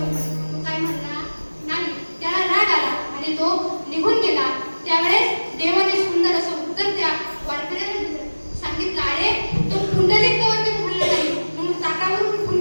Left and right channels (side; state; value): both; inverted; correlation -1.00